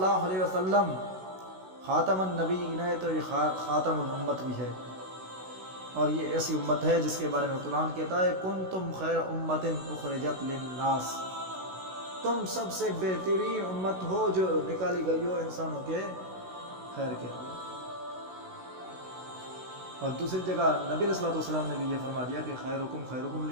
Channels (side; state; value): left; late; 16 ms